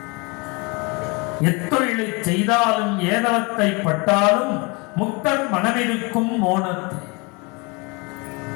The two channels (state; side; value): quieter; right; 28.8 dB